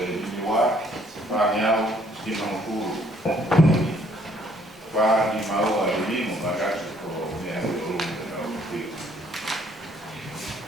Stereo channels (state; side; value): normal; both; correlation 0.64